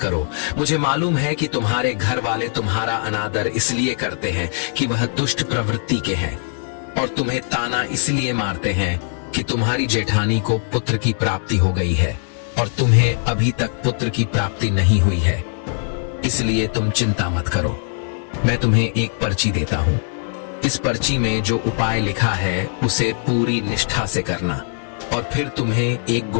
मुझे मालूम है कि तुम्हारे घर वाले तुम्हारा अनादर इसलिए करते हैं कि वह दुष्ट प्रवृत्ति के हैं और तुम्हें ताना इसलिए मारते हैं कि तुम्हारी जेठानी को पुत्र की प्राप्ति हो गई है और तुम्हें अभी तक पुत्र की प्राप्ति नहीं हुई है। इसलिए तुम चिंता मत करो, मैं तुम्हें एक पर्ची देता हूँ। इस पर्ची में जो उपाय लिखा है उसे पूरी निष्ठा से करना और फिर तुम्हें एक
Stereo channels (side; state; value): right; silent; digital silence